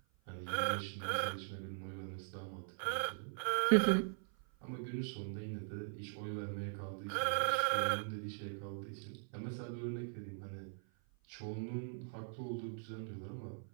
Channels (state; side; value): silent; left; 51 dB below the other